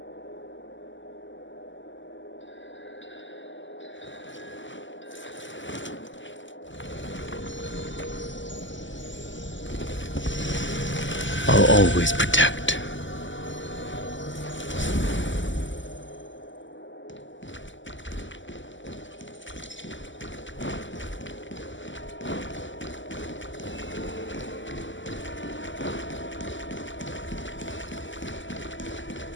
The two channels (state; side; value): late; right; 0.55 ms